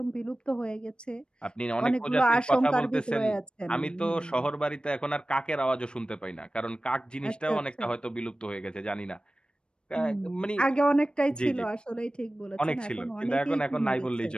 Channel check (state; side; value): late; right; 0.053 ms